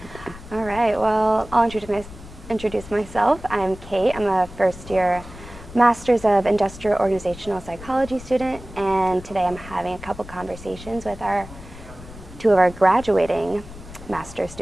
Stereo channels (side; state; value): left; noise; rumble, 16 dB below the sound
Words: All right, well, I'll introduce myself. I'm Kate. I'm a first-year Master's of Industrial Organizational Psychology student, and today I'm having a couple conversations with two of our graduating master